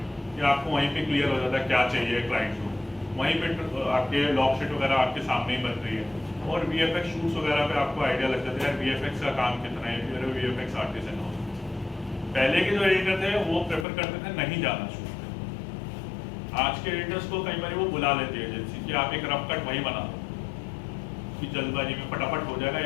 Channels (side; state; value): right; drops out; at 13.9 s